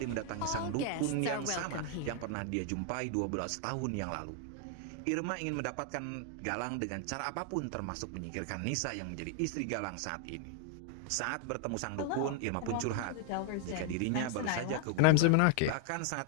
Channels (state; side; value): different; both; correlation 0.00